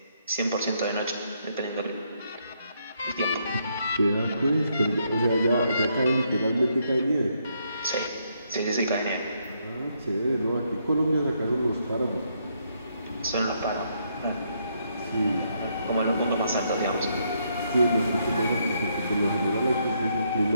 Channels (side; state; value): both; inverted; correlation -0.75